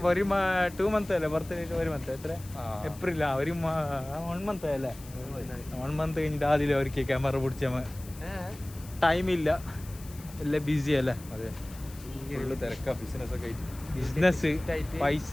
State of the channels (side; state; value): left; noise; hiss, 19 dB below the sound